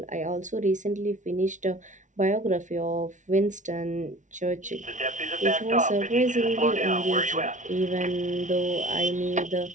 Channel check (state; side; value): late; left; 0.37 ms